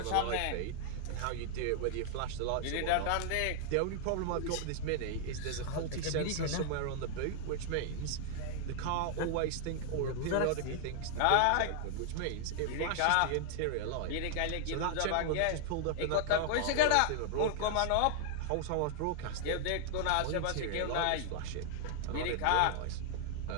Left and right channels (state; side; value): different; both; correlation -0.01